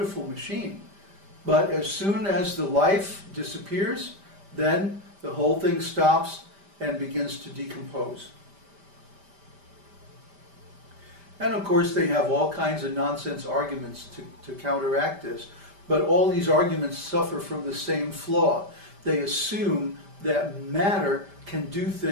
machine, but as soon as the life disappears, then the whole thing stops and begins to decompose. And of course they have all kinds of nonsense arguments to counteract this, but all these arguments suffer from the same flaw. They assume that matter can do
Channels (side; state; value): left; late; 5.1 ms